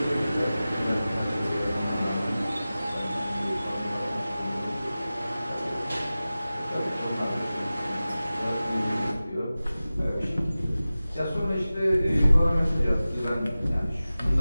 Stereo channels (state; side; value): inverted; both; correlation -0.96